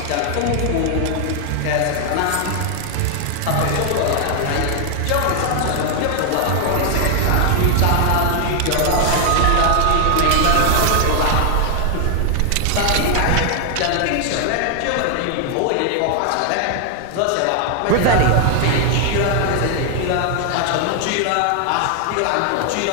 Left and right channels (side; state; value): both; different; correlation 0.00